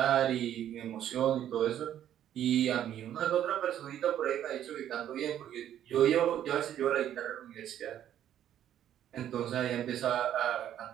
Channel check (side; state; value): left; quieter; 10.9 dB